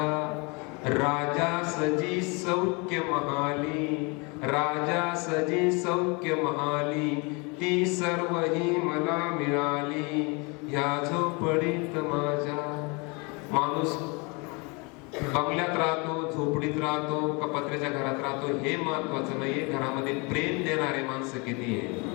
राजा सजी सौख्य महाली, राजा सजी सौख्य महाली, ती सर्व ही मला मिळाली ह्या झोपडीत माझ्या. माणूस बंगल्यात राहतो, झोपडीत राहतो का पत्र्याच्या घरात राहतो हे महत्वाचं नाहीये, घरामध्ये प्रेम देणारे माणसं किती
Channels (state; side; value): quieter; right; 29.9 dB